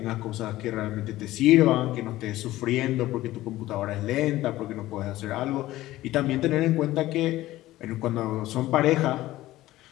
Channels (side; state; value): right; quieter; 16.1 dB